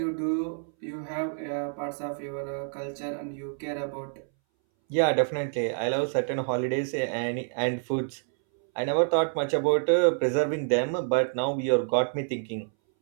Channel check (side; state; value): left; silent; 60 dB below the other